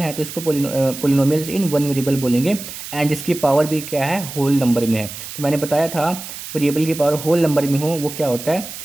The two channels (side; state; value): right; noise; hiss, 11 dB below the sound